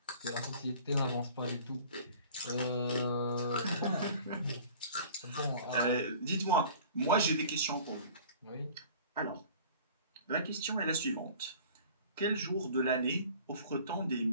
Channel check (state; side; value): inverted; both; correlation -0.47